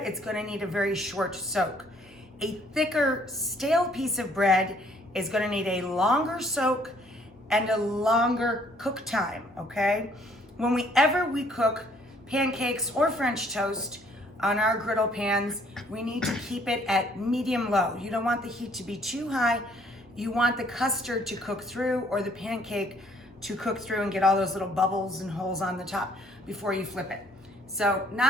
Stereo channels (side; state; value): both; normal; correlation 0.63